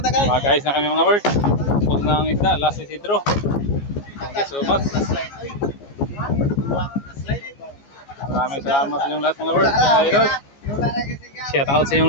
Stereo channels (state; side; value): late; right; 14 ms